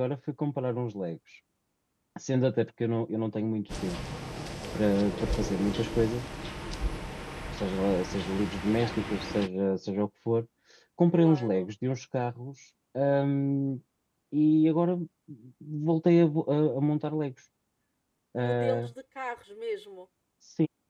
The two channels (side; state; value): both; identical; correlation 1.00